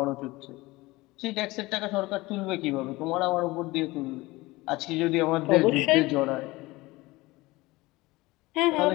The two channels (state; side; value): quieter; right; 20.7 dB